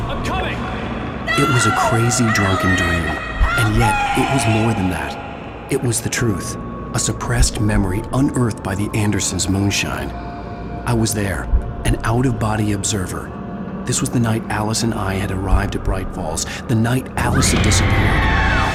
I'm coming. It was a crazy drunken dream, and yet it was more than that. It was the truth, a suppressed memory unearthed by the Andersons' moonshine. I was there, an out-of-body observer. This was the night Alice and I had arrived at Bright Falls, the night Alice had disappeared.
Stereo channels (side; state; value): both; identical; correlation 1.00